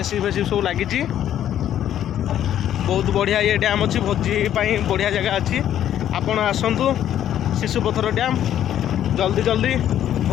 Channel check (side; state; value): right; quieter; 10.9 dB